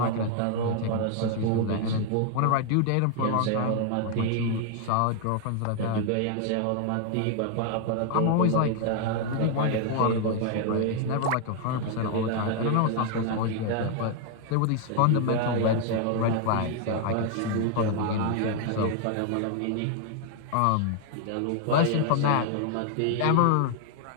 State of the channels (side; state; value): both; different; correlation 0.00